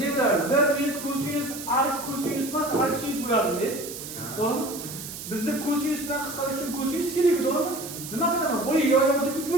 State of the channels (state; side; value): noise; right; hiss, 10 dB below the sound